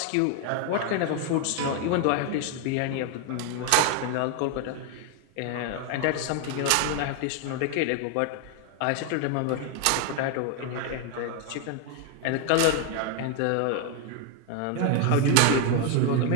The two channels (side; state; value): both; different; correlation 0.01